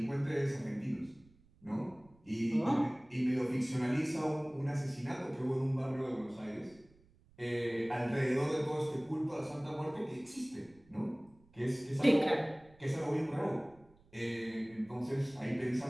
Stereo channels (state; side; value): noise; right; rumble, 29 dB below the sound